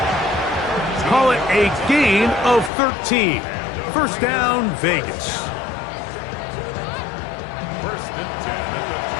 Call it a gain of 13. 1st down, Vegas. 1st and 10 at the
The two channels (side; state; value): right; drops out; at 2.7 s